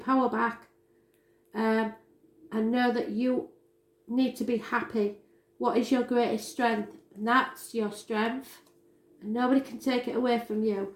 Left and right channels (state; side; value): identical; both; correlation 1.00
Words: back and know that you need to be happy. What is your greatest strength? And that's your strength, and nobody can take it away from you.